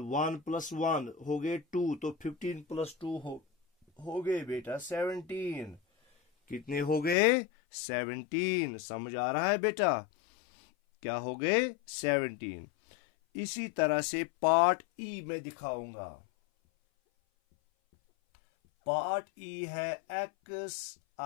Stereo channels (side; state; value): right; drops out; at 7.2 s